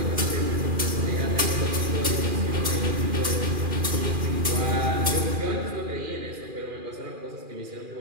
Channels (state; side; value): late; left; 2.4 ms